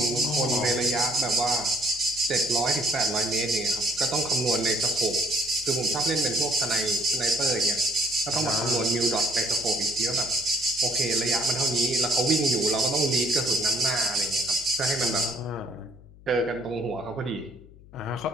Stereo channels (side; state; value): left; noise; hum, 22 dB below the sound